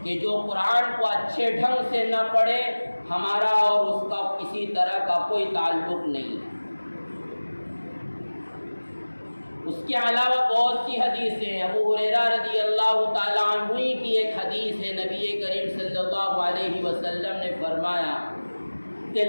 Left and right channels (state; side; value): inverted; both; correlation -1.00